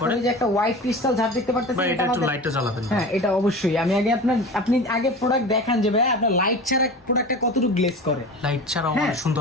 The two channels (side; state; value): both; normal; correlation 0.34